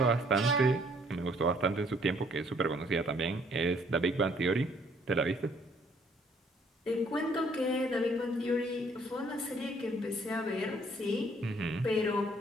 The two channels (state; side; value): normal; both; correlation 0.63